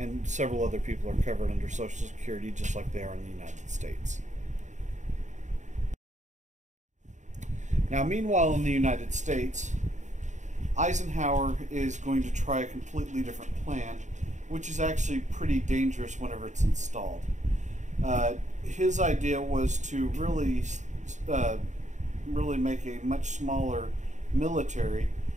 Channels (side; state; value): left; late; 0.35 ms